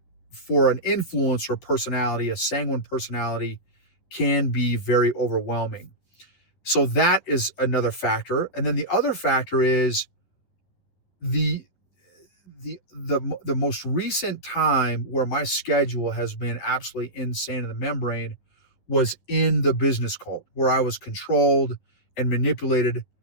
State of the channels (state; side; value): late; right; 11 ms